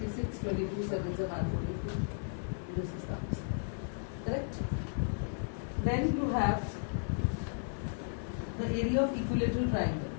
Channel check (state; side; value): silent; right; 55 dB below the other